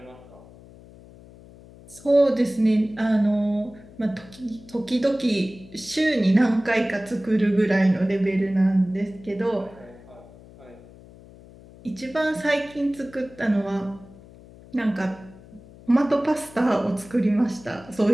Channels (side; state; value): left; noise; hum, 21 dB below the sound